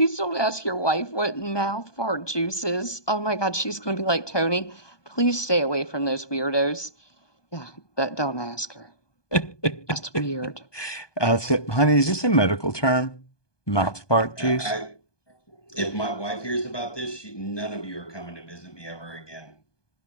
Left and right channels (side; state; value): right; late; 1.2 ms